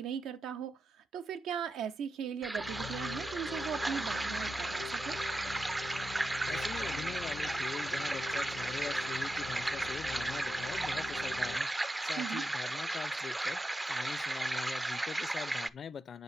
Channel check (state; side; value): normal; both; correlation 0.89